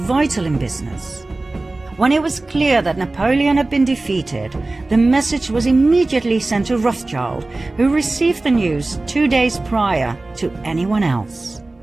in business. When it was clear that Napoleon had been defeated, the message was immediately sent to Rothschild, who received the news 2 days prior to anyone else.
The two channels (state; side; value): quieter; left; 3.1 dB